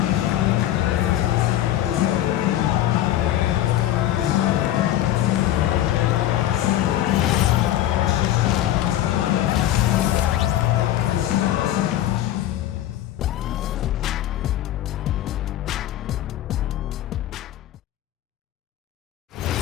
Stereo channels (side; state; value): right; quieter; 12.9 dB